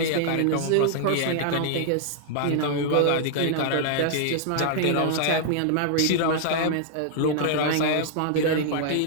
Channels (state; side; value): different; both; correlation -0.01